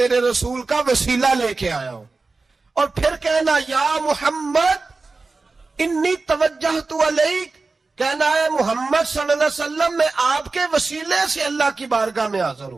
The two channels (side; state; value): left; quieter; 3.8 dB